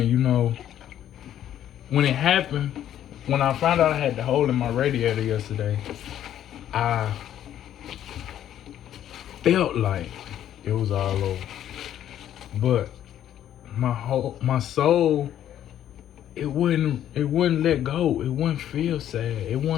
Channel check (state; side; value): quieter; right; 11.1 dB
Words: you know, when it happened, when I found out I had the hole in my radiator yesterday, I felt like it was all over. But my soul, it wouldn't let go. It wouldn't feel sad. It